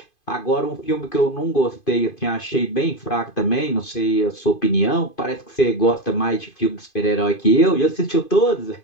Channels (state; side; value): late; right; 2.5 ms